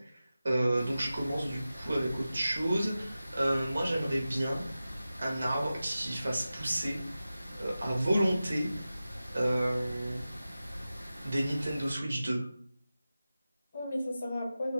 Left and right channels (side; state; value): both; inverted; correlation -0.94